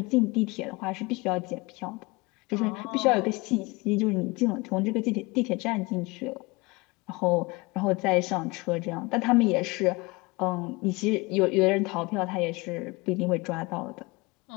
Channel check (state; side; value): quieter; right; 24.6 dB